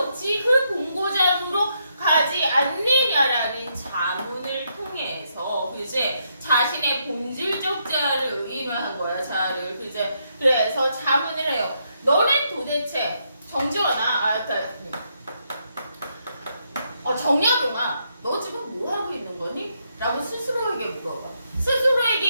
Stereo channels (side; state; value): both; inverted; correlation -0.78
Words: 그 본고장으로 가지 않느냐라는 자문을 통해서 그제 자신의 본질적 자아를 의인화한 거야. 자아를 그제 그래서 자문을 해요. 너는 도대체 정지원아, 정약용아, 너 지금 뭐 하고 있는 거니? 라고 스스로에게 물어봐. 스스로에게